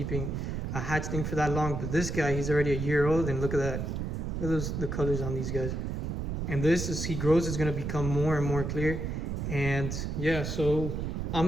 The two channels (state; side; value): noise; right; rumble, 3 dB below the sound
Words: a hatchling for that long. But this guy, he's already a year old, and look at that. Look at the colors on these guys. And this, as he grows, is going to become more and more clear. And yeah, so